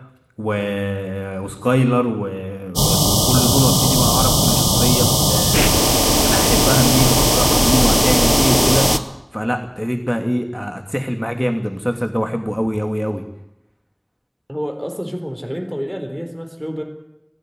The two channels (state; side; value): identical; both; correlation 1.00